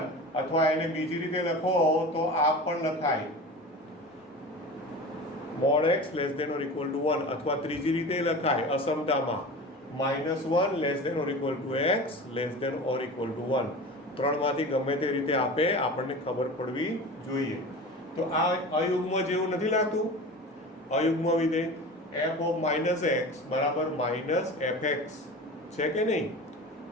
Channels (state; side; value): normal; both; correlation 0.33